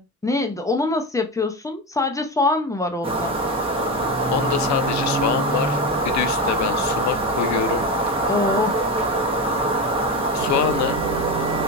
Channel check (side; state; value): both; normal; correlation 0.18